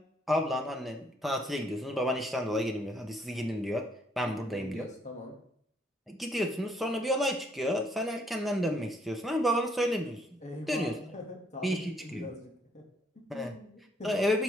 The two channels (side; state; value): both; normal; correlation 0.68